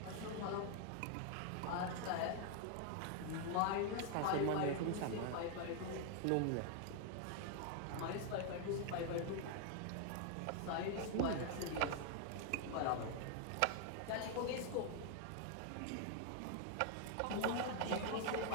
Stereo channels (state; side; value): different; both; correlation 0.00